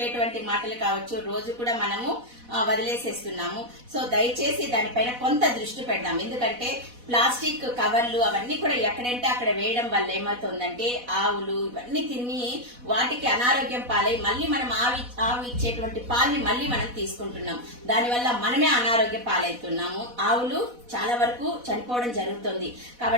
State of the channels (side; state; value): left; late; 4.1 ms